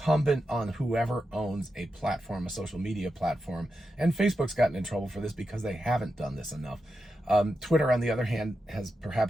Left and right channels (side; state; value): both; normal; correlation 0.88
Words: on whoever owns a platform, a social media platform. And Facebook's gotten in trouble for this because they haven't done this enough. Twitter, on the other hand, has